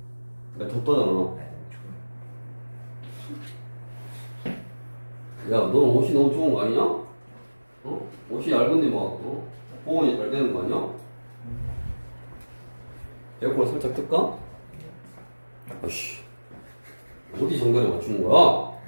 야, 덥다잖아. 아니, 너무 추워요. 야, 너 옷이 너무 좋은 거 아니냐? 옷이 얇은데 막, 보온이 잘 되는 거 아니야? 에어컨을 살짝 틀까? 아씨. 어디 정도에 맞추는 거야?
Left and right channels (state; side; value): inverted; both; correlation -1.00